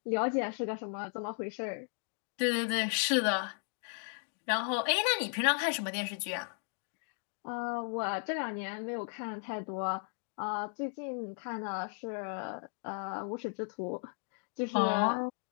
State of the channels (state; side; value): silent; right; 54 dB below the other